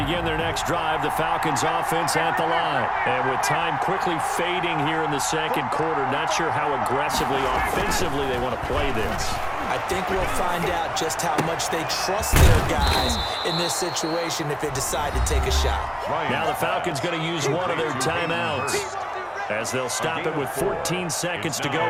their next drive, the Falcons offense at the line. And with time quickly fading here in the second quarter, not sure how aggressively, offensively they want to play this. I think we'll find out just how much they trust their guys in this situation if they decide to take a shot. Now the Falcons going to use one of their timeouts, as they'll stop it with 14 seconds to go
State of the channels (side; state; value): both; identical; correlation 1.00